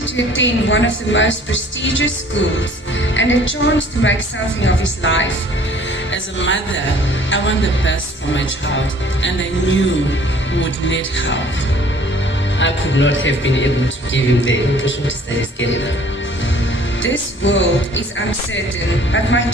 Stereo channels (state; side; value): normal; both; correlation 0.54